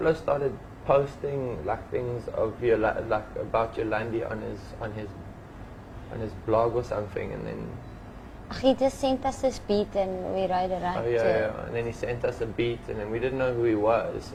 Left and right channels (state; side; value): identical; both; correlation 1.00